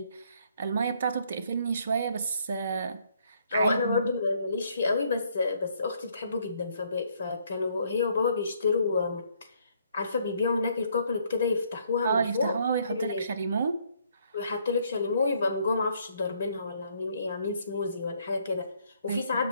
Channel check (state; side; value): inverted; both; correlation -0.67